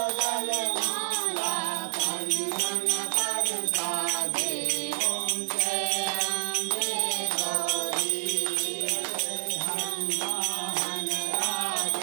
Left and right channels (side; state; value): left; silent; 58 dB below the other